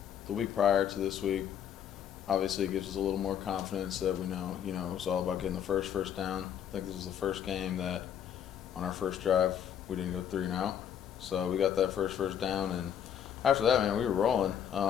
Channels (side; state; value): right; quieter; 9.1 dB